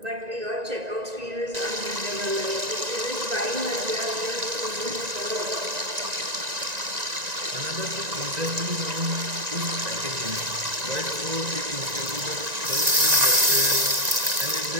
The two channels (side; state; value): left; late; 1.9 ms